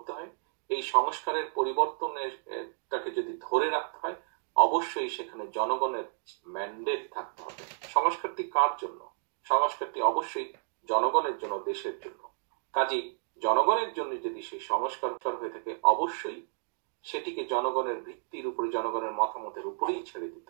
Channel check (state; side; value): silent; left; 57 dB below the other